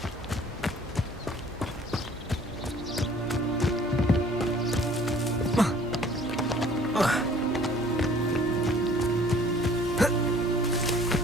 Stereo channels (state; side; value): normal; both; correlation 0.54